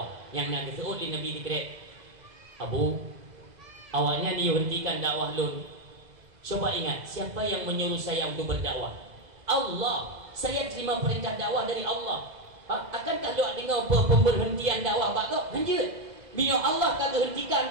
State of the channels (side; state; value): left; late; 2.0 ms